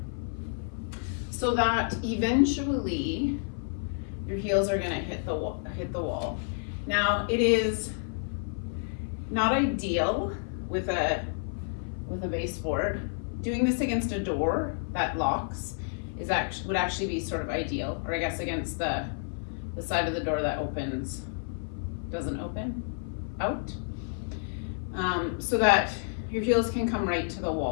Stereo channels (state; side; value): silent; right; 58 dB below the other